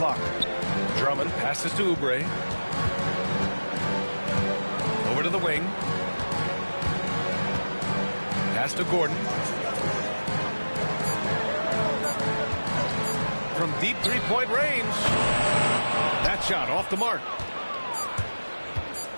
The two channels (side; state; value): both; inverted; correlation -1.00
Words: Drummond passes to Oubre. Over to the wing. Pass to Gordon. From deep three-point range. That shot off the mark.